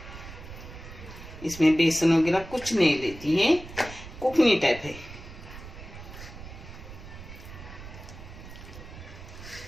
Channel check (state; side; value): noise; right; rumble, 14 dB below the sound